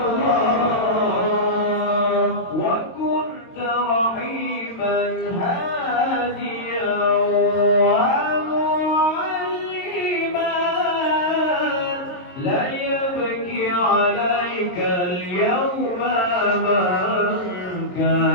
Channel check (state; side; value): late; right; 22 ms